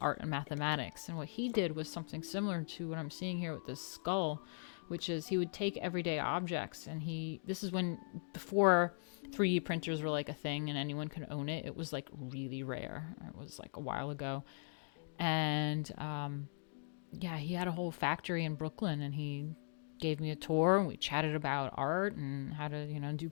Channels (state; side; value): silent; right; digital silence